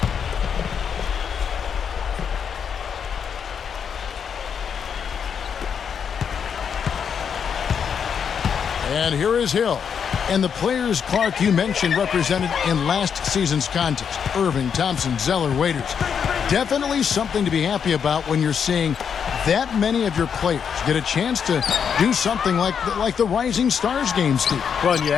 And here is Hill. And the players, Clark, you mentioned represented in last season's contest. Irving, Thompson, Zeller, Waiters. Definitely something to be happy about when you're seeing that many of your players get a chance to do something like the Rising Stars game, Steve. Well, and you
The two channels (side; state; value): right; quieter; 7.2 dB